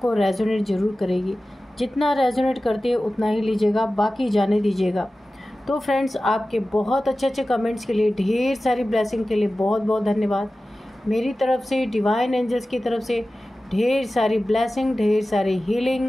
रेजोनेट ज़रूर करेगी। जितना रेजोनेट करती है उतना ही लीजिएगा, बाकी जाने दीजिएगा। तो फ्रेंड्स, आपके बहुत अच्छे अच्छे कमेंट्स के लिए, ढेर सारी ब्लेसिंग के लिए बहुत बहुत धन्यवाद। मेरी तरफ से, डिवाइन एंजल्स की तरफ से ढेर सारी ब्लेसिंग, ढेर सारी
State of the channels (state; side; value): normal; both; correlation 0.95